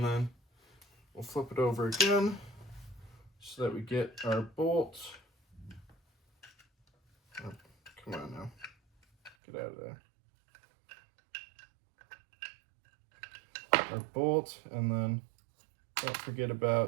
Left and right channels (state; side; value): drops out; left; at 9.3 s